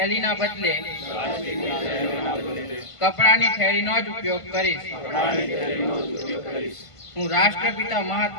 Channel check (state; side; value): late; right; 1.5 ms